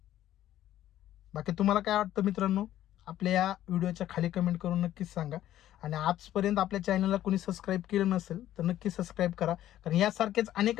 बाकी तुम्हाला काय वाटतं मित्रांनो, आपल्या या व्हिडिओच्या खाली कमेंट करून नक्कीच सांगा. आणि आजपर्यंत आपल्या चॅनलला कोणी सबस्क्राईब केलं नसेल तर नक्की सबस्क्राईब करा, कारण यासारखेच अनेक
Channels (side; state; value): right; quieter; 12.7 dB